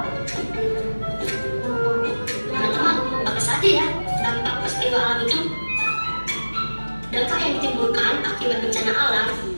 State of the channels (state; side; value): inverted; both; correlation -1.00